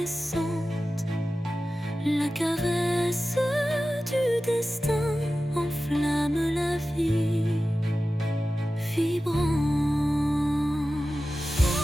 La caresse du destin enflamme la vie vibrante.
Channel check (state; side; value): normal; both; correlation 0.95